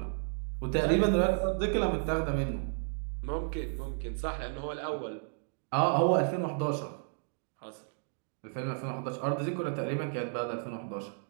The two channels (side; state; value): left; silent; digital silence